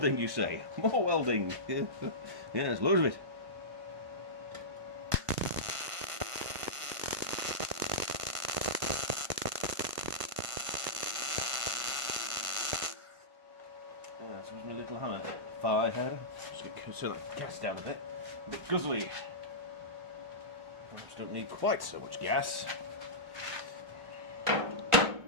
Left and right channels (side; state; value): left; late; 1.5 ms